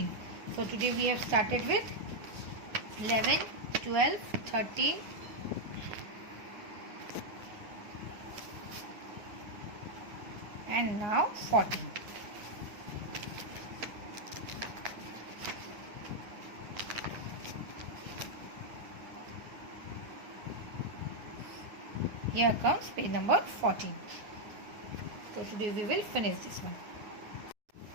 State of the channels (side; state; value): left; late; 9.6 ms